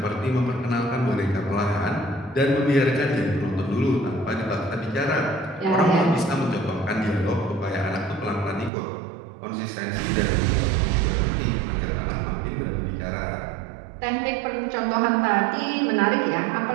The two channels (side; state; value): left; drops out; at 8.7 s